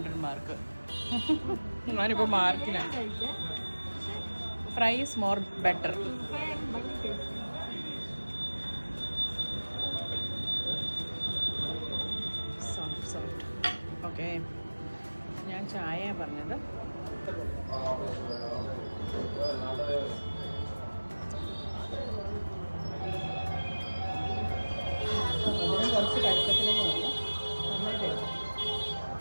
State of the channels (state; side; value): inverted; both; correlation -1.00